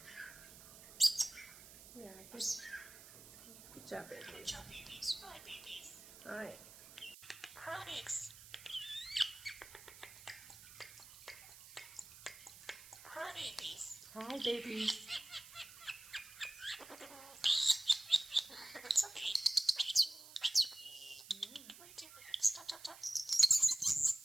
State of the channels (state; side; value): noise; right; hiss, 17 dB below the sound